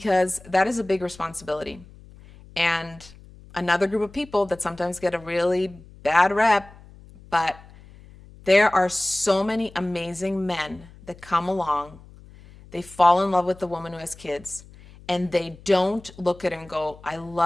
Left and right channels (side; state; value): left; noise; hum, 21 dB below the sound